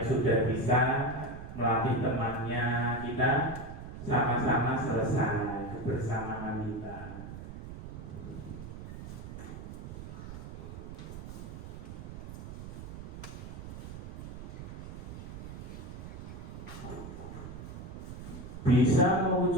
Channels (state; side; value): noise; right; rumble, 10 dB below the sound